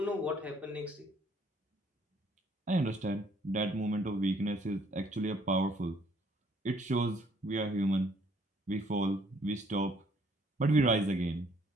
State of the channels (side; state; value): both; normal; correlation 0.63